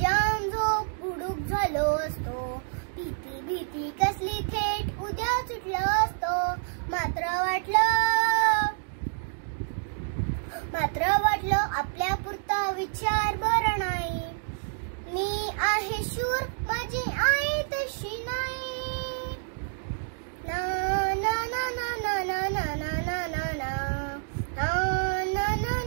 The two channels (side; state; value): left; silent; digital silence